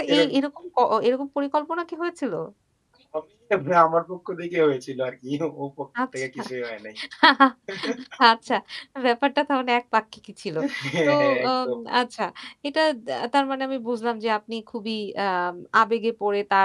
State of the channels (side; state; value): both; identical; correlation 1.00